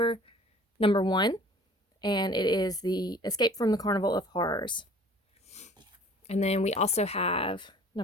number 1, and it is the Escape from the Carnival of Horrors. And then we also have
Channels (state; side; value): normal; both; correlation 0.49